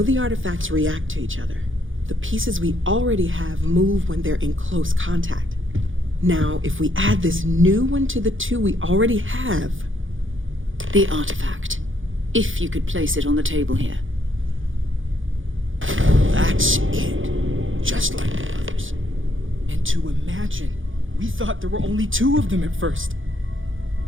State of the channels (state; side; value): late; left; 0.58 ms